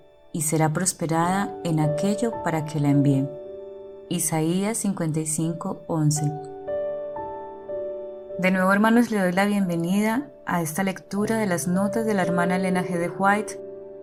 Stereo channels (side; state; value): both; identical; correlation 1.00